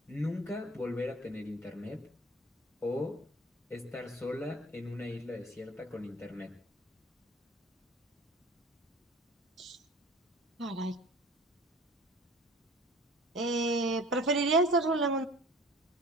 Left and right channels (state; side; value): normal; both; correlation 0.43